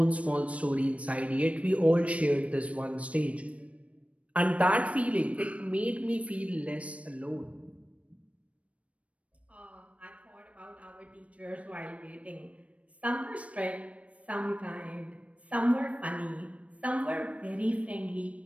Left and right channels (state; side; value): late; left; 0.064 ms